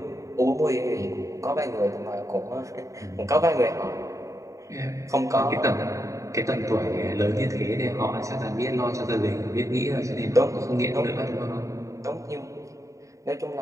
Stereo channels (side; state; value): left; late; 0.16 ms